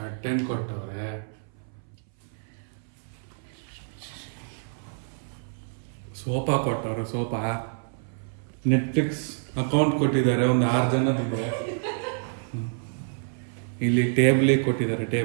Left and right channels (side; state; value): left; silent; 59 dB below the other